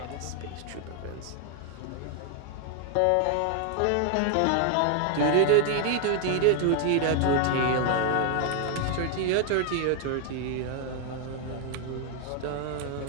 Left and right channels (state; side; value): different; both; correlation 0.00